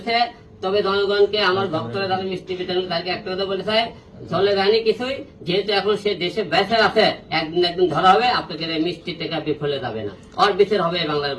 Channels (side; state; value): both; identical; correlation 1.00